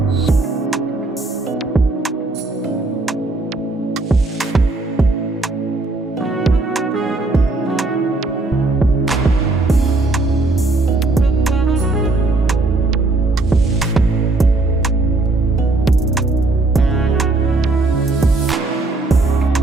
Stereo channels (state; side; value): quieter; left; 3.2 dB